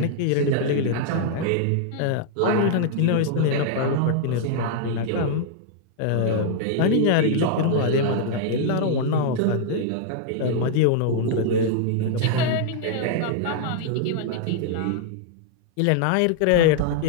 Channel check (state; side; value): different; both; correlation -0.01